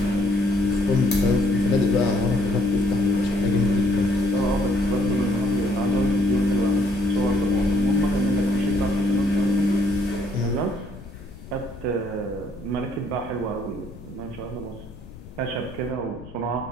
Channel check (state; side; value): noise; left; rumble, 17 dB below the sound